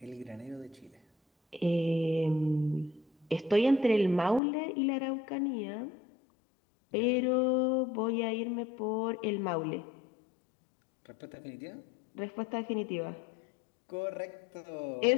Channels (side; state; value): right; drops out; at 4.4 s